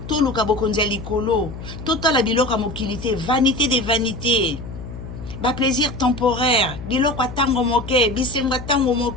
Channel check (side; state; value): left; noise; hum, 11 dB below the sound